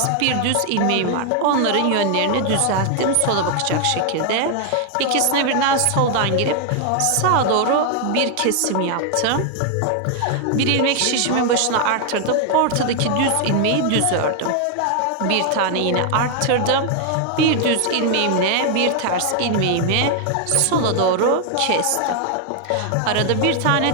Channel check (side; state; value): both; different; correlation 0.00